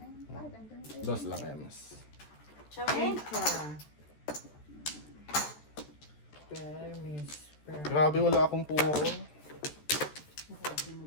yun. 5. Andun na tayo. Dos lang, Ems. Ciao. 8 ka. Permis. Grabe, wala akong puro.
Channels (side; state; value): right; late; 13 ms